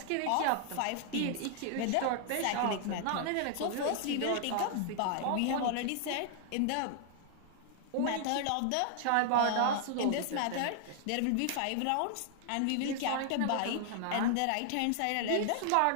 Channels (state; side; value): different; both; correlation 0.00